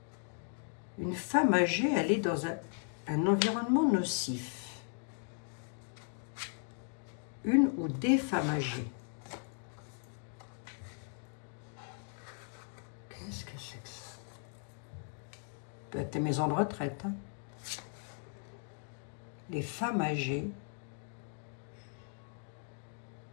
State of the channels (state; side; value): silent; right; 53 dB below the other